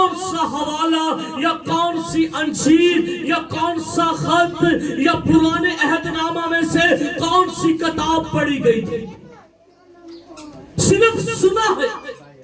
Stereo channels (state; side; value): identical; both; correlation 1.00